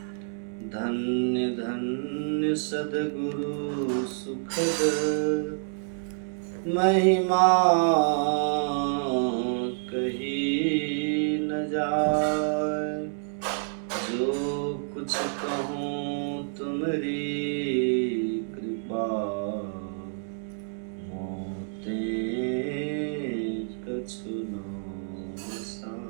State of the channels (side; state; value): left; silent; digital silence